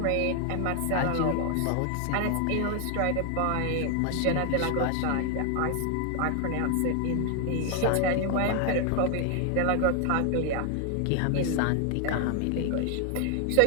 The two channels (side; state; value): both; different; correlation 0.00